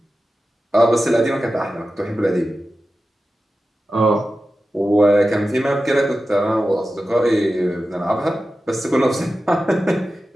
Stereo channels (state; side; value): normal; both; correlation 0.93